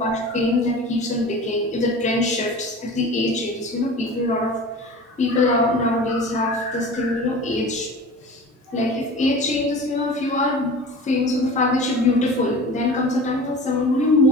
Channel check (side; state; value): both; normal; correlation 0.37